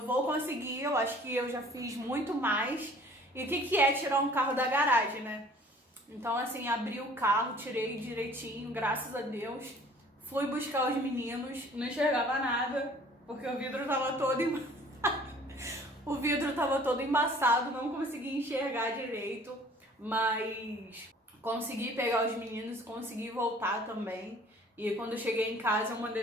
conseguir, eu acho que eu já fiz muito mais. E o que é tirar um carro da garagem, né? Então assim, abri o carro, tirei direitinho, graças a Deus. Fui buscar os meninos, não enxergava nada, porque o vidro tava todo embaçado. O vidro tava todo embaçado, não consegui enxergar direito. Mas consegui pegar os meninos, consegui voltar também. E quando eu cheguei em casa, eu mandei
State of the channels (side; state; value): both; normal; correlation 0.52